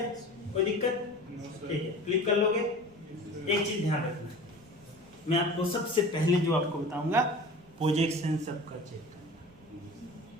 कोई दिक्कत? ठीक है, क्लिक कर लोगे। एक चीज ध्यान रखना, मैं आपको सबसे पहले जो आपको बताऊंगा, प्रोजेक्शन सबका चेक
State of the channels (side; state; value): right; noise; rumble, 27 dB below the sound